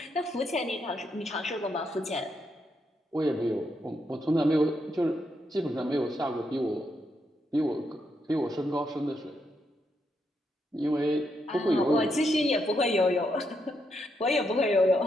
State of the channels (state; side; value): normal; both; correlation 0.80